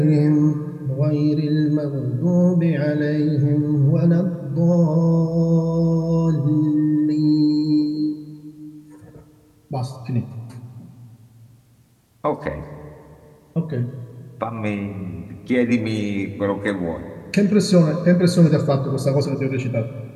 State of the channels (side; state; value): both; identical; correlation 1.00